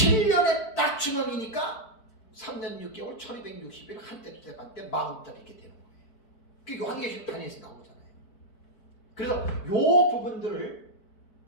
딱 중앙이니까 3년 6개월 1260일 한때 두때 반때 40달 이렇게 되는 거예요. 그게 요한계시록 단위에서 나오잖아요. 그래서 요 부분들을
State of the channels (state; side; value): late; right; 4.5 ms